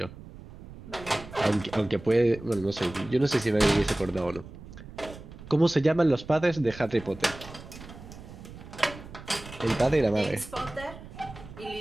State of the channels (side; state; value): right; noise; rumble, 16 dB below the sound